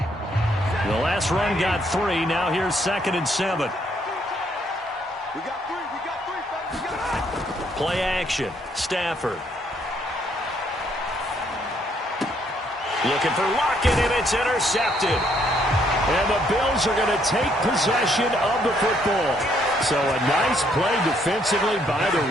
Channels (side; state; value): both; normal; correlation 0.70